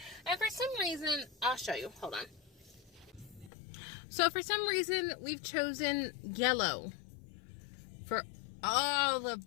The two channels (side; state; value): right; drops out; at 3.5 s